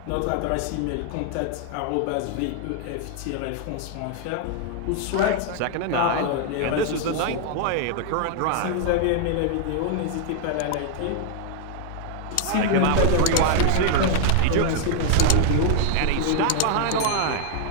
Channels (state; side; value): different; both; correlation 0.00